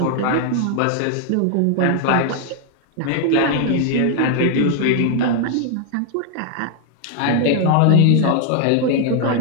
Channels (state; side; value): different; both; correlation 0.00